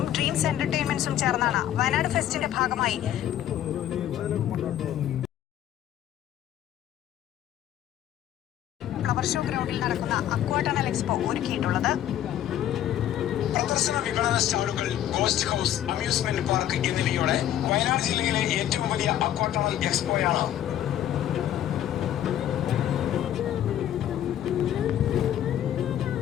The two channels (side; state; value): right; quieter; 11.5 dB